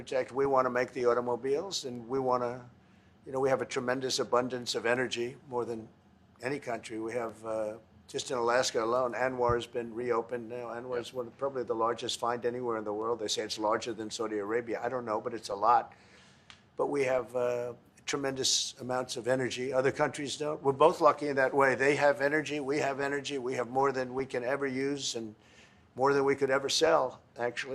make the automobiles, and we want to, you know, we have a tremendous abundance of energy, more than any country. We have, just in Alaska alone, Anwar has been reopened now. Anwar is probably the largest find anywhere in the world. They say it's larger than Saudi Arabia. I don't know, but it's a lot. But we have tremendous amounts of energy. Other countries don't. We're both lucky in that way. They have energy. We have energy. We have more than we can ever use and more than we could ever sell,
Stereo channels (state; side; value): identical; both; correlation 1.00